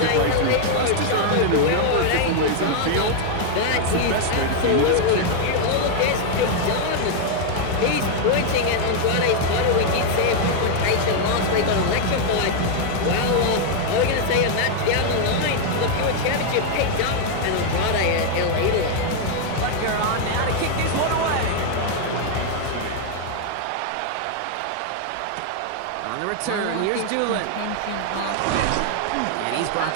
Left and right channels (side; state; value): both; different; correlation 0.00